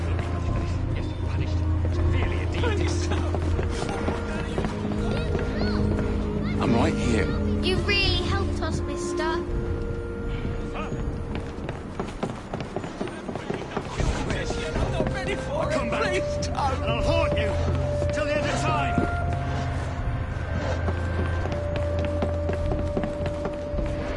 I'm right here. You really helped us, mister. Come back. And I'll haunt you till the end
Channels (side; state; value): both; identical; correlation 1.00